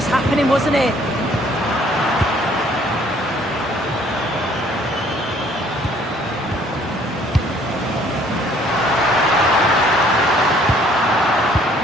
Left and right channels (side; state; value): both; normal; correlation 0.60